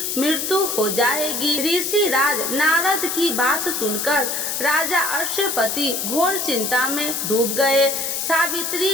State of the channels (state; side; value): noise; left; hiss, 2 dB below the sound